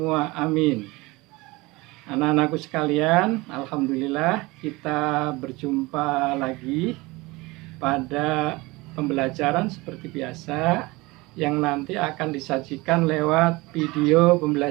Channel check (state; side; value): quieter; left; 22.6 dB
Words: amin. Anak-anakku sekalian, alhamdulillah kita berjumpa lagi pada pembelajaran seperti biasa yang nanti akan disajikan lewat video